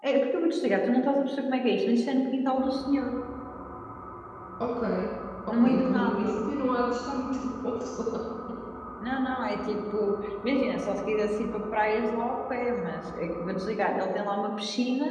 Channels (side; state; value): both; identical; correlation 1.00